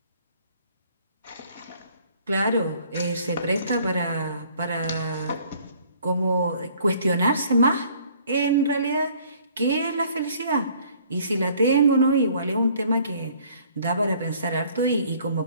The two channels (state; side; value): inverted; both; correlation -0.58